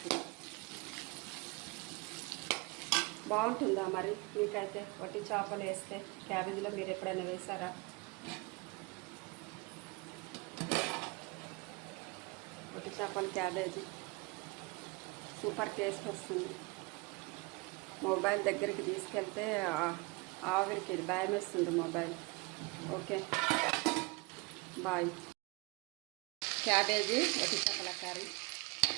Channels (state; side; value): quieter; left; 27.0 dB